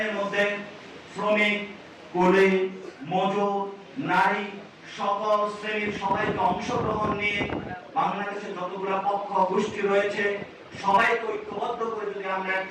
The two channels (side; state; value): both; identical; correlation 1.00